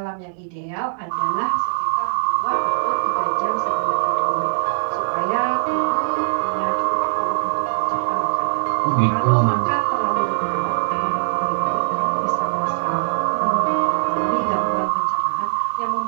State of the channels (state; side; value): silent; left; digital silence